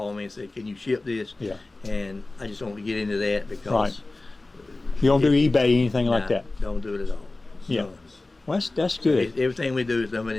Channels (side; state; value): right; quieter; 3.1 dB